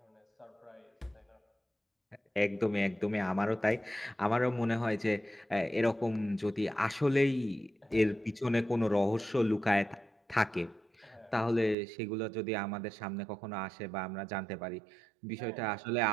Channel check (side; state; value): left; drops out; at 11.8 s